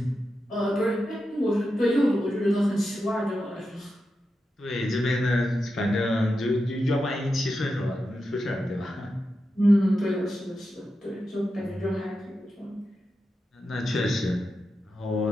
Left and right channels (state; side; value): normal; both; correlation 0.89